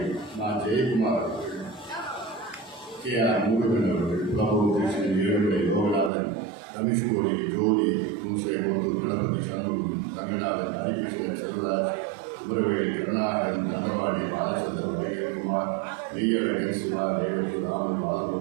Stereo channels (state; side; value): drops out; left; at 6.1 s